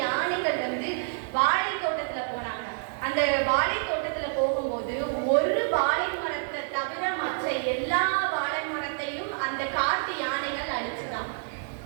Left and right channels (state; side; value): silent; left; 59 dB below the other